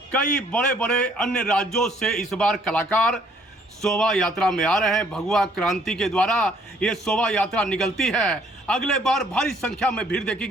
कई बड़े बड़े अन्य राज्यों से इस बार कलाकार शोभा यात्रा में आ रहे हैं। भगवा क्रांति के द्वारा ये शोभा यात्रा निकलती है। अगले बार भारी संख्या में भीड़ देखी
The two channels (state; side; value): normal; both; correlation 0.63